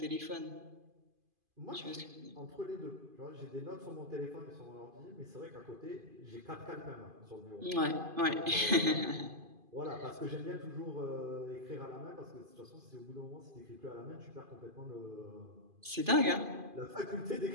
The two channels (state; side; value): late; left; 2.5 ms